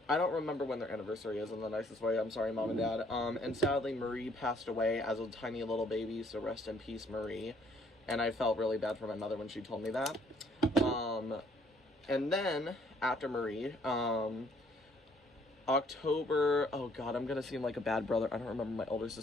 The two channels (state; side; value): normal; both; correlation 0.63